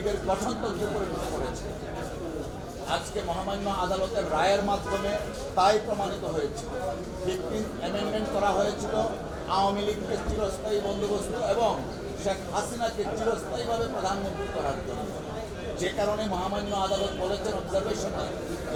গঠনতন্ত্রে পরিণত করেছে। আজকে মহামান্য আদালতের রায়ের মাধ্যমে তাই প্রমাণিত হয়েছে। 15th অ্যামেন্ডমেন্ট করা হয়েছিল আওয়ামী লীগকে চিরস্থায়ী বন্দোবস্ত এবং শেখ হাসিনাকে চিরস্থায়ীভাবে প্রধানমন্ত্রী করার জন্য। যে কারণে মহামান্য আদালত বলেছেন অবজারভেশনে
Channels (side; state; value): both; identical; correlation 1.00